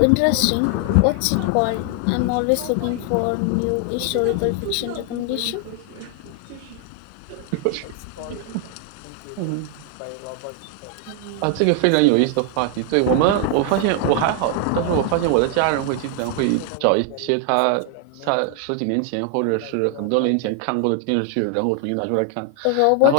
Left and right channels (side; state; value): both; different; correlation 0.00